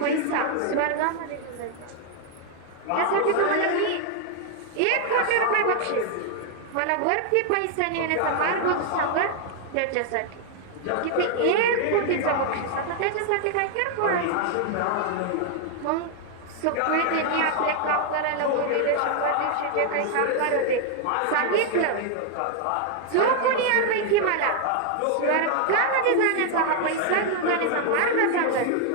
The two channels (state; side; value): different; both; correlation 0.00